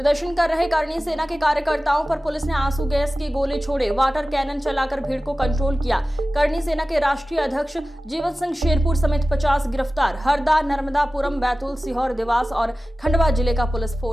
कर रहे करणी सेना के कार्यकर्ताओं पर पुलिस ने आंसू गैस की गोले छोड़े, वाटर कैनन चलाकर भीड़ को कंट्रोल किया। करणी सेना के राष्ट्रीय अध्यक्ष जीवन सिंह शेरपुर समेत 50 गिरफ्तार। हरदा, नर्मदापुरम, बैतूल, सीहोर, देवास और खंडवा जिले का पुलिस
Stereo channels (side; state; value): both; normal; correlation 0.96